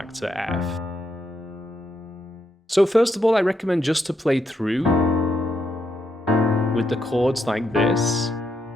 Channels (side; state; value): both; normal; correlation 0.80